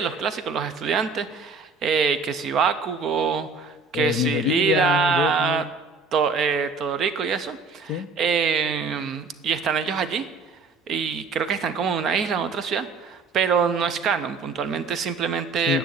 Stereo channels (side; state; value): left; quieter; 4.3 dB